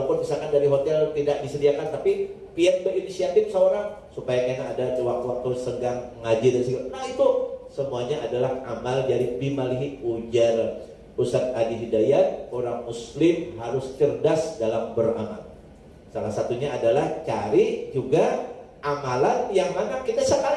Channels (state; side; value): identical; both; correlation 1.00